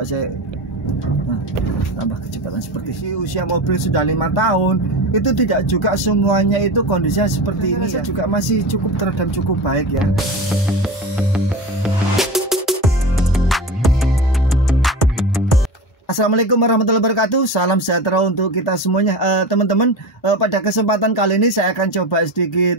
saya tambah kecepatan seperti ini. Usia mobil sudah 5 tahun, itu tidak juga semuanya itu kondisinya seperti ini ya. Juga masih cukup teredam, cukup baik ya. Assalamualaikum warahmatullahi wabarakatuh. Salam sejahtera untuk kita semuanya. Teman-teman, pada kesempatan kali ini saya akan coba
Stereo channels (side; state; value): both; normal; correlation 0.27